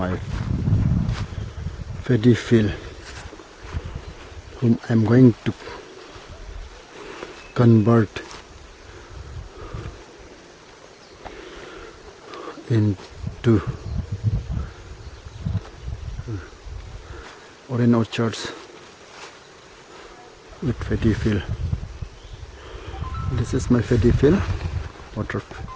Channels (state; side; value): identical; both; correlation 1.00